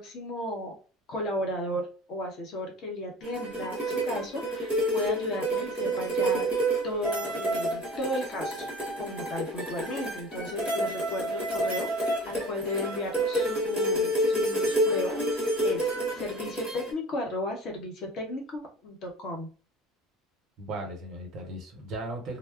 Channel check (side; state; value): both; normal; correlation 0.40